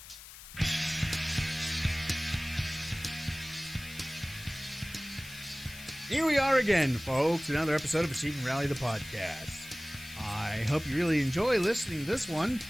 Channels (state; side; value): noise; left; hiss, 15 dB below the sound